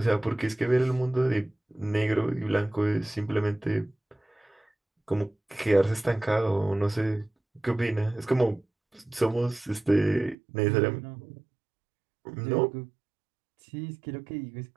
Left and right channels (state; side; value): drops out; left; at 10.4 s